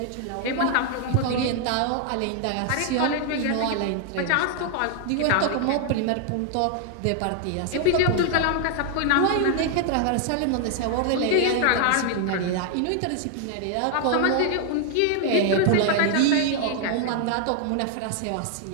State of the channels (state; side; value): different; both; correlation 0.00